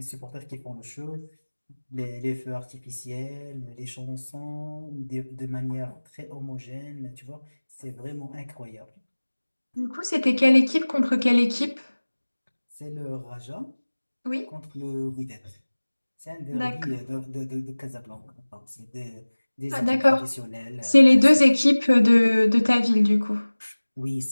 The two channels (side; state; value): both; inverted; correlation -1.00